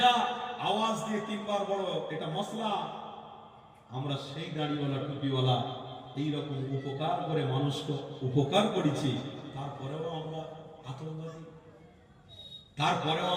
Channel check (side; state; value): both; identical; correlation 1.00